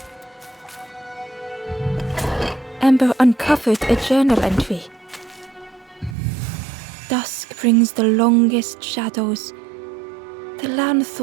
Ember uncovered a journal entry. "Dusk brings the longest shadows. The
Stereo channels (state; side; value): drops out; left; at 6.2 s